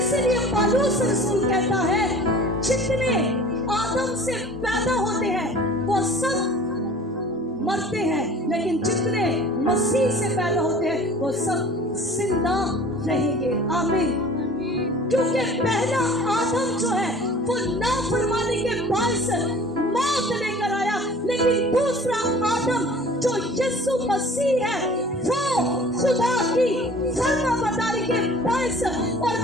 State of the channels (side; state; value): both; normal; correlation 0.46